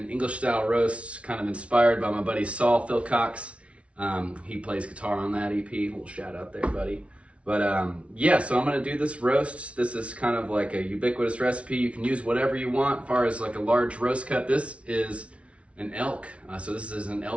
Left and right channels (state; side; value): late; left; 0.062 ms